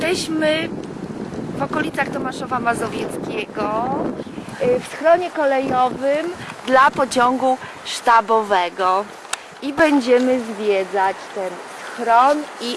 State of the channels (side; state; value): both; identical; correlation 1.00